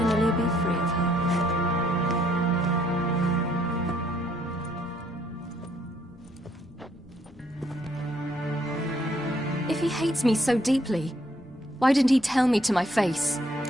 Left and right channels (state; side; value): normal; both; correlation 0.69